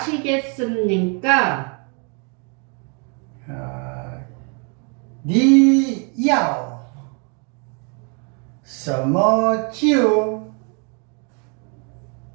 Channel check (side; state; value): left; quieter; 36.7 dB